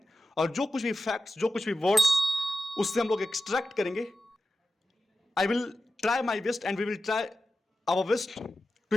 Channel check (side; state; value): both; normal; correlation 0.92